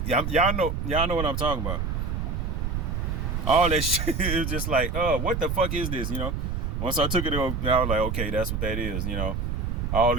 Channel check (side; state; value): right; noise; rumble, 2 dB below the sound